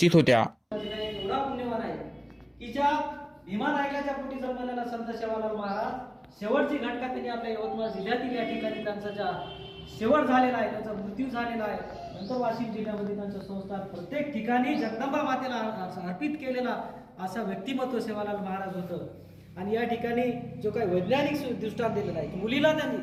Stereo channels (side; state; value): both; identical; correlation 1.00